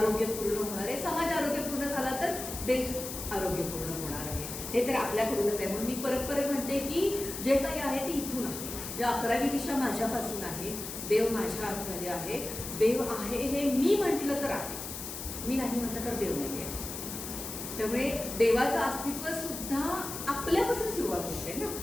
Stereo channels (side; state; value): left; noise; hiss, 8 dB below the sound